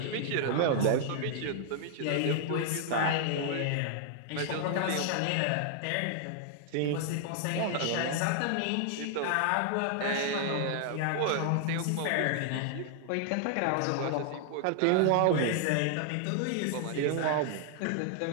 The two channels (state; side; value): different; both; correlation 0.00